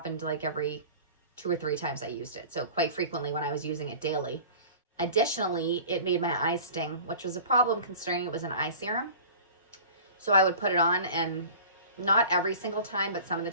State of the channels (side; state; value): both; inverted; correlation -0.41